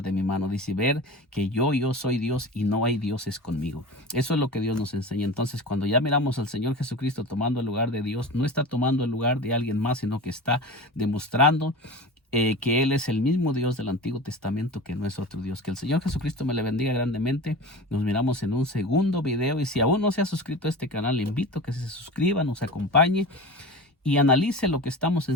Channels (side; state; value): both; normal; correlation 0.31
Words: de mi mano. Dice: ver que yo soy Dios y no hay dioses conmigo. Eso es lo que Dios nos enseña. Entonces, cuando ya miramos al Señor Jesucristo tomando el lugar de Dios, no está tomando el lugar de alguien más, sino que está demostrando que Él es el mismo Dios del Antiguo Testamento, que no es otro Dios. Que el Señor Jesucristo me le bendiga grandemente. Nos miramos en un segundo video, y si aún no se ha suscrito a este canal, le invito a que se suscriba, nos acompañe, y analice lo que estamos